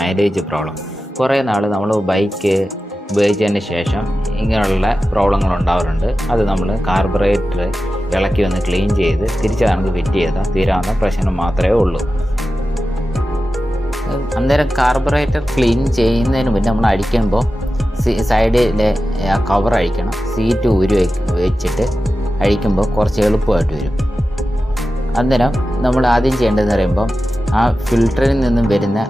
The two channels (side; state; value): both; normal; correlation 0.93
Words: പ്രോബ്ലം. കുറേ നാൾ നമ്മൾ ബൈക്ക് ഉപയോഗിച്ചതിന് ശേഷം ഇങ്ങനെയുള്ള പ്രോബ്ലങ്ങൾ ഉണ്ടാവാറുണ്ട്. അത് നമ്മൾ കാർബറേറ്റർ ഇളക്കി ഒന്ന് ക്ലീൻ ചെയ്ത് തിരിച്ച് നമുക്ക് ഫിറ്റ് ചെയ്താൽ തീരാവുന്ന പ്രശ്നം മാത്രമേ ഉള്ളൂ. അന്നേരം കാർബറേറ്റർ ക്ലീൻ ചെയ്യുന്നതിന് മുന്നേ നമ്മൾ അടിക്കുമ്പോൾ സൈഡിലെ ആ കവർ അഴിക്കണം. സീറ്റ് ഊരി വെച്ചിട്ട് അഴിക്കുമ്പോൾ കുറച്ച് എളുപ്പമായിട്ട് വരും. അന്നേരം നമ്മൾ ആദ്യം ചെയ്യേണ്ടതെന്ന് പറയുമ്പോൾ ആ ഫിൽറ്ററിൽ നിന്നും വരുന്ന